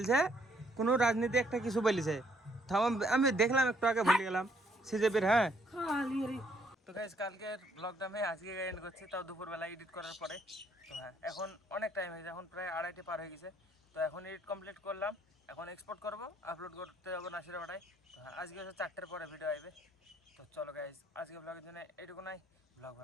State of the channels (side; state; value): both; normal; correlation 0.67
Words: কোনো রাজনীতি একটা কিছু বলেছে। আমি দেখলাম একটু আগে ভুলে গেলাম, সিজেপির হ্যাঁ খালি রে তো গাইজ কালকের ব্লগটা আমি আজকে এন্ড করছি, তাও দুপুরবেলা এডিট করার পরে। তো হ্যাঁ, এখন অনেক টাইম হয়েছে, এখন প্রায় 2:30 পার হয়ে গেছে। তো এখন এডিট কমপ্লিট করলাম, এখন এক্সপোর্ট করবো, আপলোড করতে যাবো নাসিরাপাড়ায়। তো হ্যাঁ, আজকে হচ্ছে 4টার পরে ভিডিও আসবে। তো চলো গাইজ, আজকে ব্লগের জন্য এটুকু নাই। ব্লগ